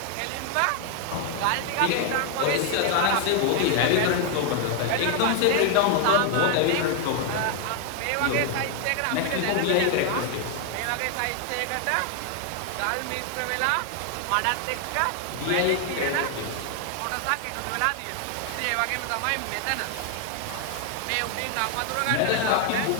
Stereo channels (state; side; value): different; both; correlation 0.00